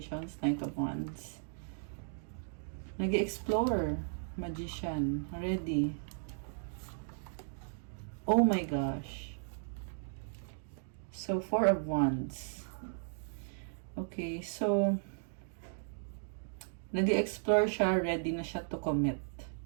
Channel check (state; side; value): silent; left; digital silence